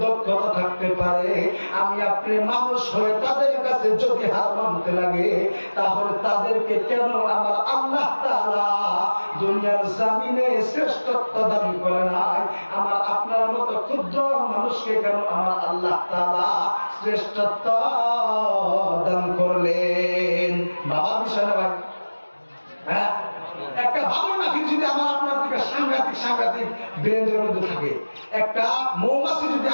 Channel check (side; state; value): both; inverted; correlation -1.00